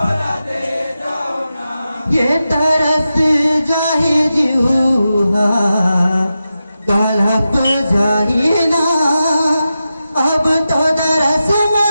ये तरस जाहि जीवा तलप जाहि ना अब तो तरस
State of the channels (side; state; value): both; inverted; correlation -0.91